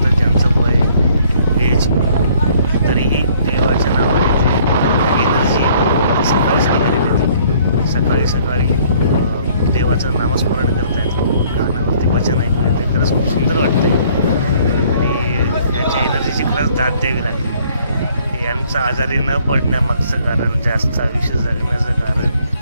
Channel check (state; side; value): inverted; both; correlation -0.61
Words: ज्यांचं वय, एज, तरीही देवाच्या नावाने ते एनर्जी सकाळी सकाळी देते. सकाळी सकाळी देवाचं नामस्मरण करतायत. गाण्यावरती भजन ऐकू येते. खरंच खूप सुंदर वाटते आणि त्यांच्या एनर्जीची खरंच दाद द्यावी लागेल. यांचं आजारी न पडण्यामागचं कारण, जास्त आयुष्य जगण्याचं कारण